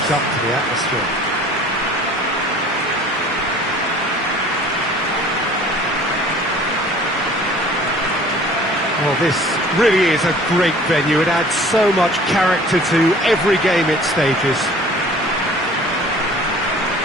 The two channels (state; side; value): normal; both; correlation 0.49